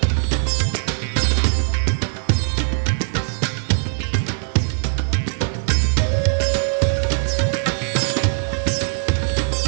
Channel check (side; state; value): left; silent; digital silence